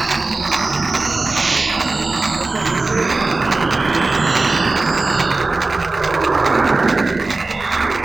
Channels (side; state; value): left; quieter; 3.4 dB